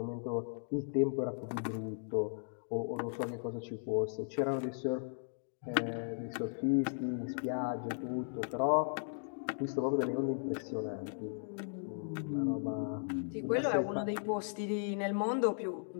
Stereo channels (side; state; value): right; silent; digital silence